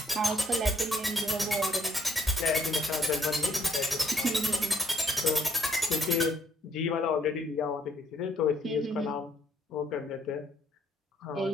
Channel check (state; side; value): normal; both; correlation 0.68